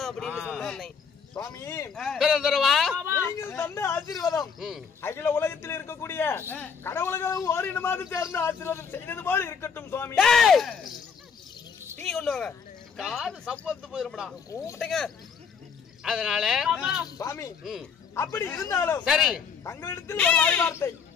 அப்படின்னு சொன்னேன் சுவாமி. நீங்கள் தந்த ஆசீர்வாதம் அகில உலகத்தில் இருக்கக்கூடிய கடவுள்களும் ஓரினமாக சேர்ந்து ஆசீர்வாதம் செய்தது போல இருக்கட்டும் சுவாமி. டீ கொண்டு வாங்க, காது சப்பத்து போயிருப்படா கூப்பிட்டேங்க. அதனால சுவாமி அப்படி இருந்தாலும் சரி தங்களிடத்தில் ஒரு வாய் வார்த்தை.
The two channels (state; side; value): quieter; right; 6.2 dB